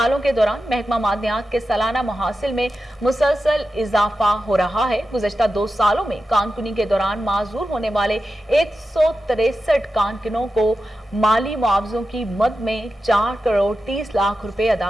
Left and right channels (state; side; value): normal; both; correlation 0.91